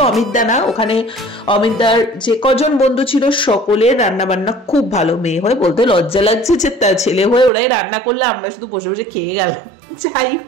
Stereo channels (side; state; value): left; drops out; at 7.5 s